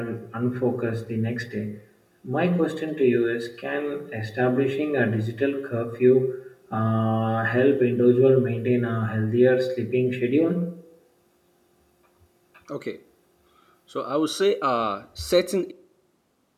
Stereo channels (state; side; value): identical; both; correlation 1.00